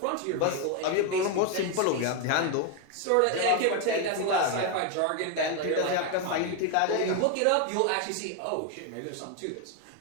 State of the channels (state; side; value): different; both; correlation 0.01